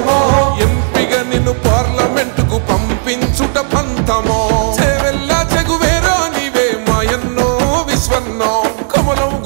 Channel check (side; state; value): left; silent; digital silence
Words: ఎంపిగా నిన్ను పార్లమెంటుకు పంపించుట పంతమో చేవెల్ల చెగువేరా నీవే మాయన్నో విశ్వన్నో కమలం